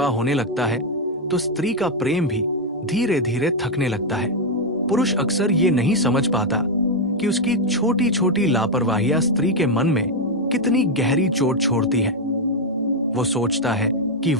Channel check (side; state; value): both; normal; correlation 0.02